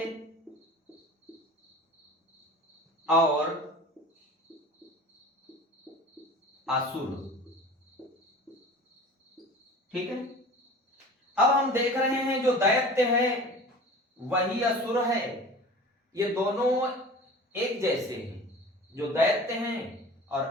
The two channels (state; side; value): normal; both; correlation 0.39